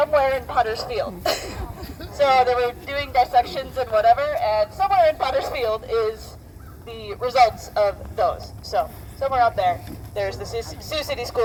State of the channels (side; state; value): both; identical; correlation 1.00